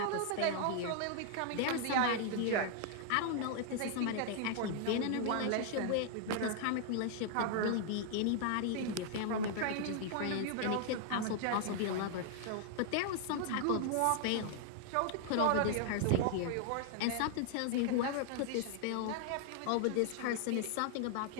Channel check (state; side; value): different; both; correlation -0.01